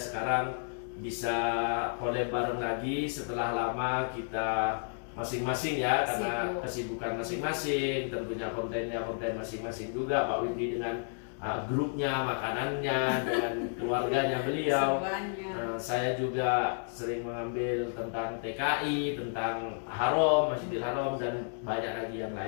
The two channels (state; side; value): silent; right; digital silence